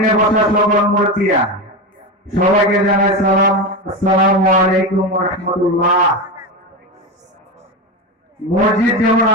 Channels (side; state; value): both; normal; correlation 0.18